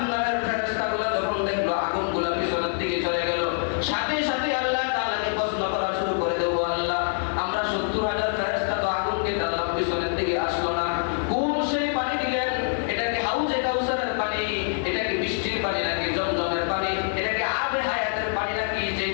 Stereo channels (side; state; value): right; silent; 55 dB below the other